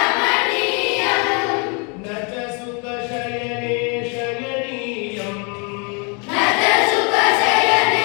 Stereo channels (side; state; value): right; quieter; 34.3 dB